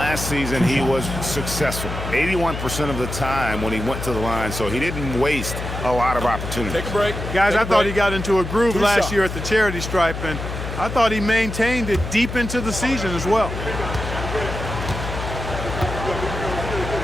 season, he was successful 81% of the time when he went to the line, so he didn't waste a lot of opportunities. Take a break. Guys, I thought he got into a groove last year at the charity stripe, and I thought he maintained it deep into the season as well.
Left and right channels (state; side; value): noise; left; hum, 6 dB below the sound